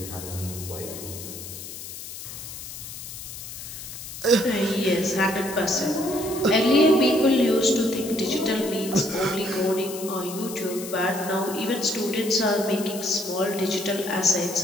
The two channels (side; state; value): left; noise; hiss, 11 dB below the sound